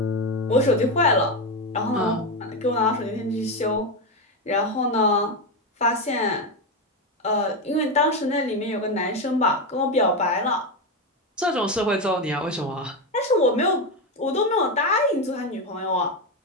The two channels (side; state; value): both; normal; correlation 0.12